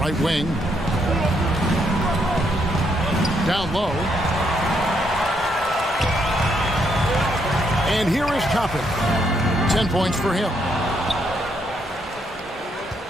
wing. Down low. And here is Toppin. 10 points for him.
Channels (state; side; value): normal; both; correlation 0.75